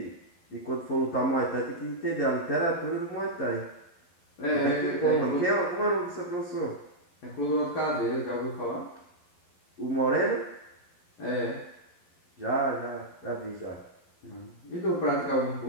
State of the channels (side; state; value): right; late; 11 ms